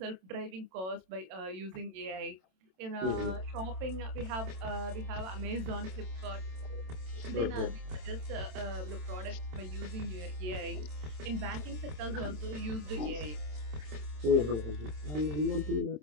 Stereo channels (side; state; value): left; late; 27 ms